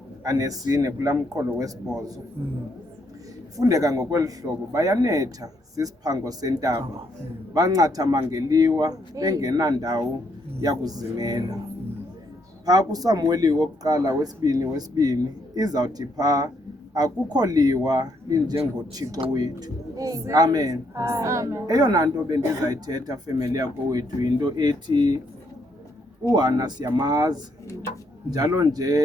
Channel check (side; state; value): both; normal; correlation 0.74